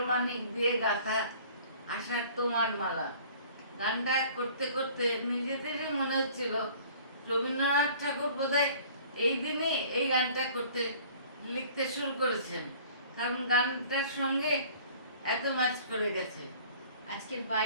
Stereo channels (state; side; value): inverted; both; correlation -0.50